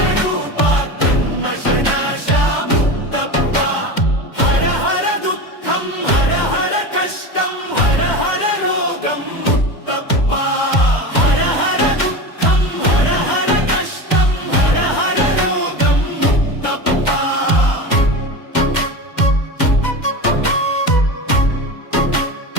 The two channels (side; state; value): right; late; 2.1 ms